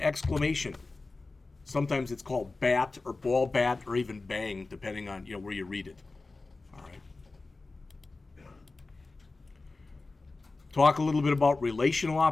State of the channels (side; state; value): right; quieter; 3.5 dB